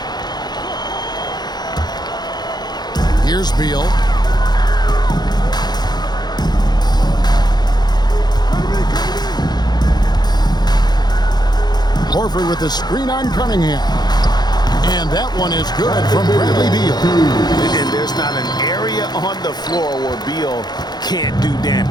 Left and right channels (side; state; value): right; late; 0.20 ms